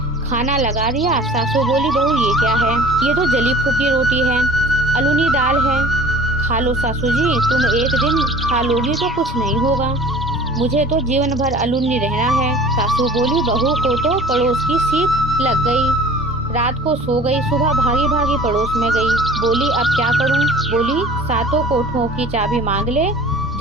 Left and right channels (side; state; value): both; normal; correlation 0.45